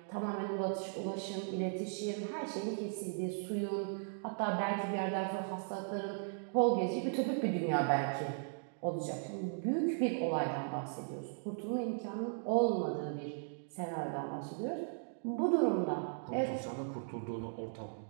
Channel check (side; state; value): left; silent; digital silence